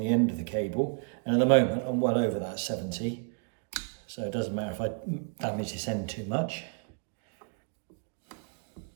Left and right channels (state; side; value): quieter; left; 39.4 dB